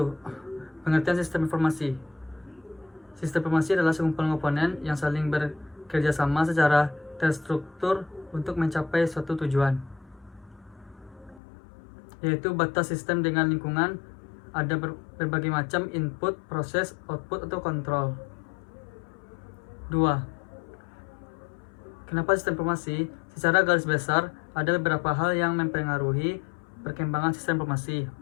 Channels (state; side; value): drops out; right; at 11.4 s